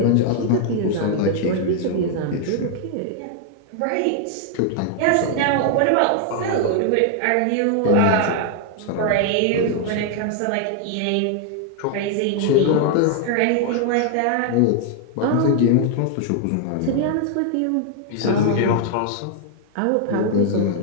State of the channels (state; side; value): different; both; correlation 0.00